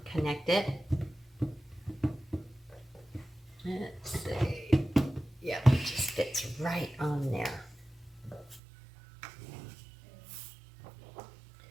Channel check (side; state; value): left; drops out; at 8.6 s